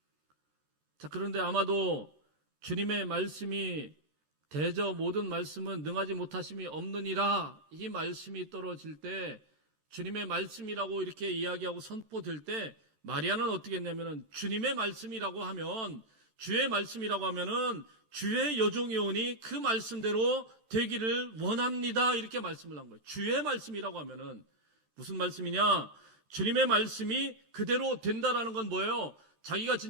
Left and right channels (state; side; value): late; left; 13 ms